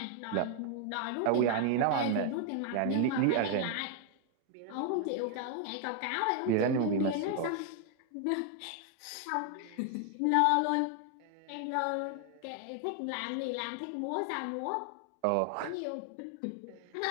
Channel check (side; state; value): both; different; correlation 0.00